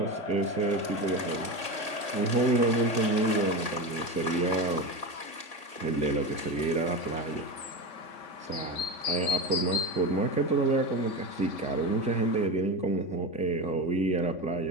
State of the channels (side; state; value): right; late; 3.5 ms